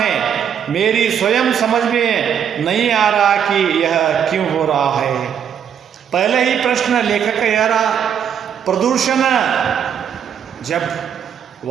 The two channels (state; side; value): quieter; left; 8.4 dB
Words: मेरी स्वयं समझ में नहीं आ रहा कि यह क्यों हो रहा है। पहले ही प्रश्न लेखक का यह रहा, प्रदूषण, जब